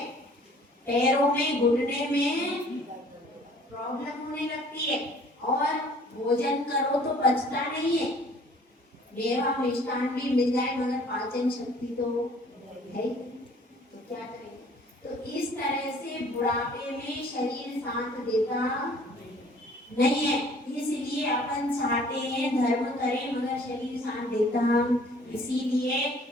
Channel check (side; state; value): both; normal; correlation 0.54